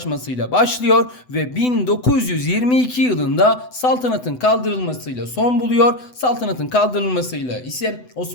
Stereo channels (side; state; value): right; late; 8.0 ms